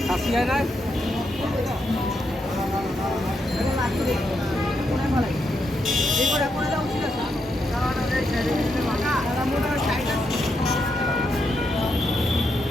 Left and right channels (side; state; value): both; normal; correlation 0.82